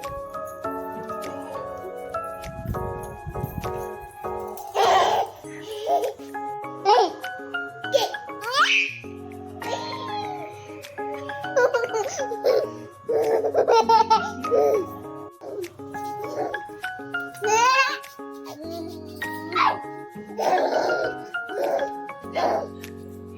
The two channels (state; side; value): identical; both; correlation 1.00